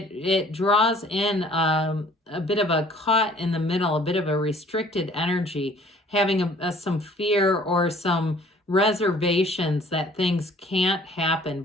draws in a bit of a caught in the middle, a bit of a restricted energy, having some fear or some reservations that things can't happen,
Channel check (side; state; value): both; normal; correlation 0.55